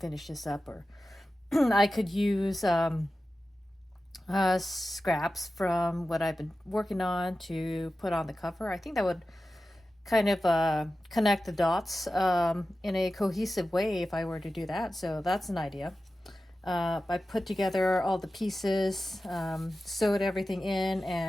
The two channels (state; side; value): normal; both; correlation 0.94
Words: this up, or I could use scraps from what I've been working on to put on the cover. I think that would kind of connect the dots in a cohesive way if I were to do that. So that's an idea. I put together all the pieces, sewed everything in,